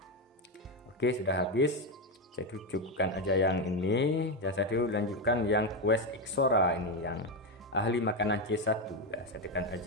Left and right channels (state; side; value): normal; both; correlation 0.10